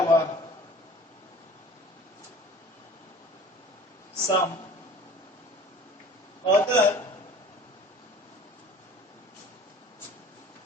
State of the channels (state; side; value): normal; both; correlation 0.46